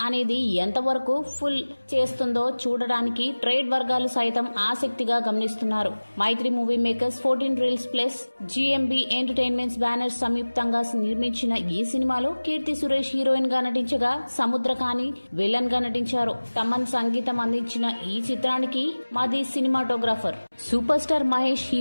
అనేది ఎంతవరకు ఫుల్ చేస్తుందో చూడడానికి ట్రేడ్ వర్గాలు సైతం ఆసక్తిగా గమనిస్తున్నారు. Mythri movie makers, 14 reels plus GMB entertainments banners సంయుక్తంగా నిర్మించిన ఈ సినిమాలో కీర్తి సురేష్ హీరోయిన్ గా నటించగా, సముద్రకాని విలన్ గా నటించారు. తమన్ సంగీతం అందించిన ఈ చిత్రానికి మాది సినిమాటోగ్రాఫర్ సూపర్ స్టార్ మహేష్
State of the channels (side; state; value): both; inverted; correlation -1.00